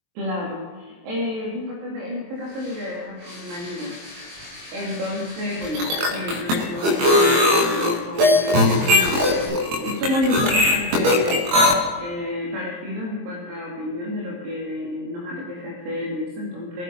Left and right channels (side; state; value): left; late; 23 ms